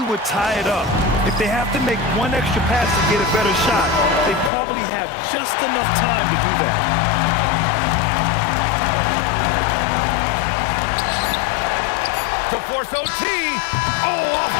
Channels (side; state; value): right; drops out; at 4.5 s